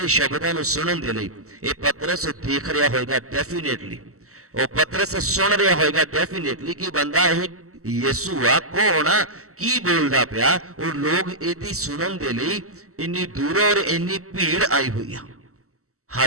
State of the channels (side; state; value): left; late; 0.64 ms